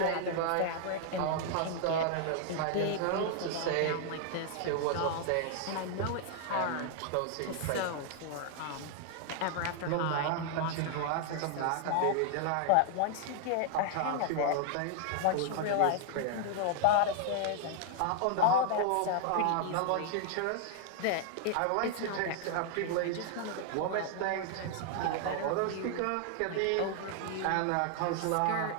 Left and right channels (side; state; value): both; different; correlation 0.00